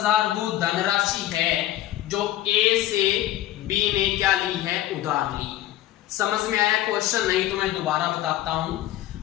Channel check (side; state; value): right; quieter; 13.9 dB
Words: वो धनराशि है जो ए से बी ने क्या ली है, उधार ली। समझ में आया क्वेश्चन? नहीं तो मैं दोबारा बताता हूं।